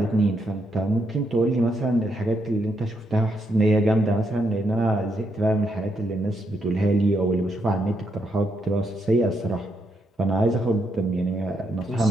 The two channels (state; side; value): normal; both; correlation 0.78